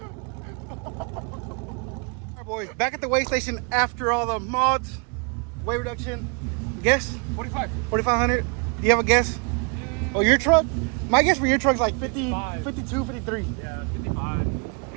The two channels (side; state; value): left; quieter; 36.1 dB